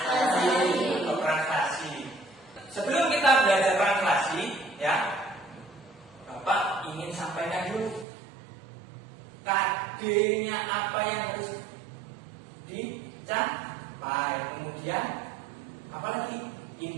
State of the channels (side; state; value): left; drops out; at 8.1 s